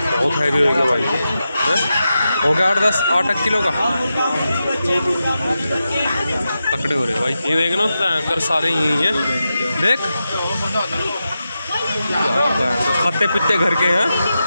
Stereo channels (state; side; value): inverted; both; correlation -0.90